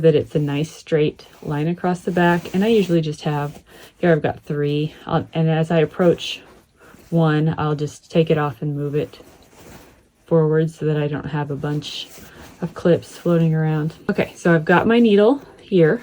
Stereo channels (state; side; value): identical; both; correlation 1.00